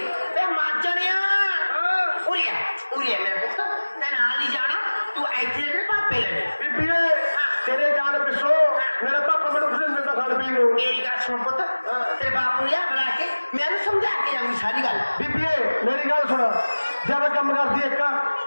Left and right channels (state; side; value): inverted; both; correlation -1.00